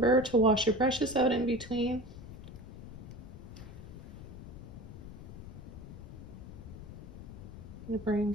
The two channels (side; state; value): left; noise; rumble, 12 dB below the sound